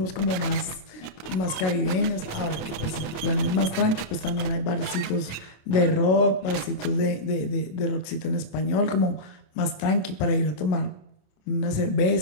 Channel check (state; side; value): late; right; 27 ms